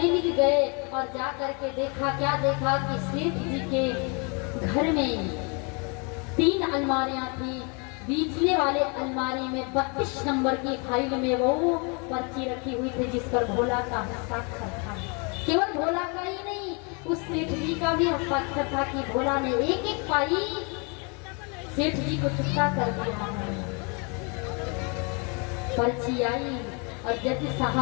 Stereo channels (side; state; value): right; quieter; 33.7 dB